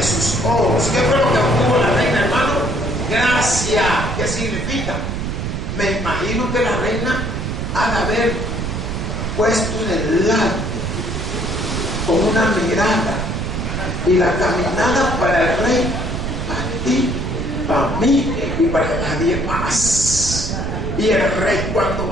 sus ojos. ¿Qué fue lo que obtuvo la reina, hermano? Gracia. ¿Qué significa? Me imagino que la reina ha de haber puesto en el lado con una mirada y la caminada para el rey, para ti, para mí y para nadie más. Y el rey, cuando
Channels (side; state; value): right; noise; rumble, 3 dB below the sound